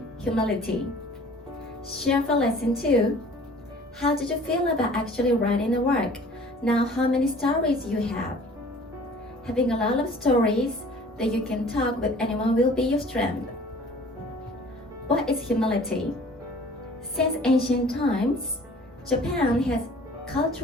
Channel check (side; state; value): both; normal; correlation 0.49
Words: Humility. Share for Lesson 2. How did you feel about actually writing the work? Now how many stories you have? Having a lot of stories that you can talk with anyone will be your strength. What is humility? Since ancient times, Japan has